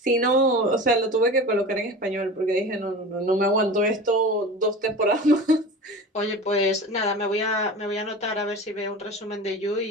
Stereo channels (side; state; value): both; normal; correlation 0.33